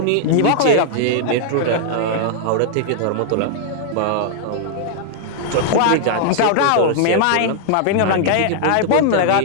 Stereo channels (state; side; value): different; both; correlation -0.01